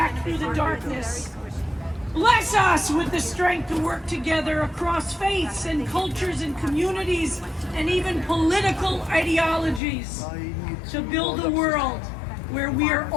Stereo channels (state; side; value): drops out; right; at 9.8 s